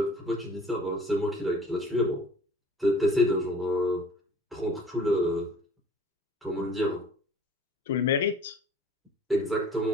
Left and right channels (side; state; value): both; normal; correlation 0.49